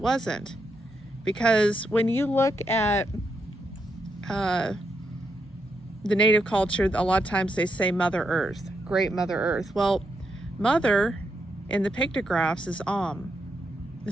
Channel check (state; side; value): normal; both; correlation 0.81